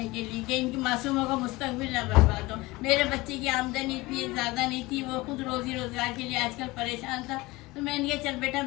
के लिए कि इनकी मासूमों का मुस्तकबिल ना बर्बाद हो। मेरे बच्चे की आमदनी इतनी ज़्यादा नहीं थी, वो खुद रोजी रोजगार के लिए आजकल परेशान था। तो मैंने कहा चल बेटा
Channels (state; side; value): quieter; right; 21.3 dB